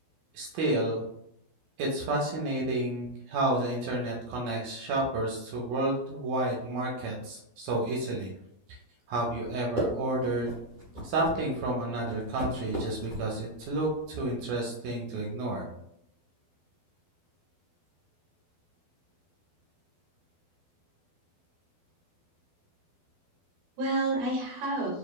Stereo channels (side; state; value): left; late; 12 ms